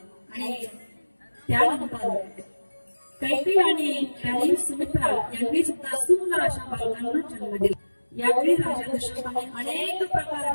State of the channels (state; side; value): inverted; both; correlation -1.00